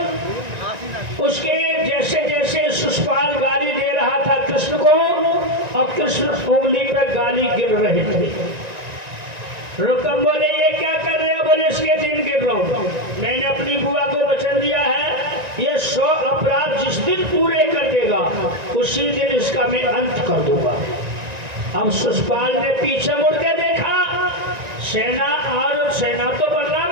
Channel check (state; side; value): late; left; 1.9 ms